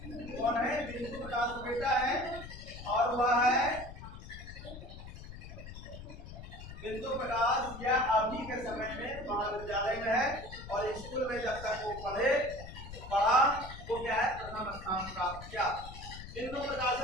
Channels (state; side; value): noise; left; rumble, 12 dB below the sound